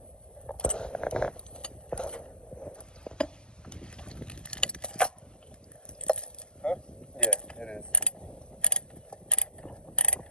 Huh? Yeah, it is.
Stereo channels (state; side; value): late; right; 0.046 ms